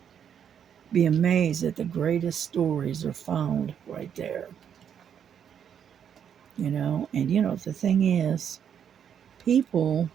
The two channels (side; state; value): left; quieter; 8.4 dB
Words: Be amazed that the greatest stories are found right there, you know? And, you know, the thing is, people